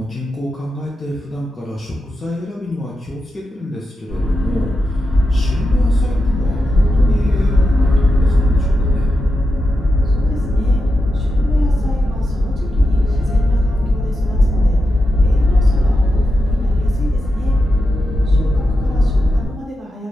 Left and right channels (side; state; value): both; normal; correlation 0.89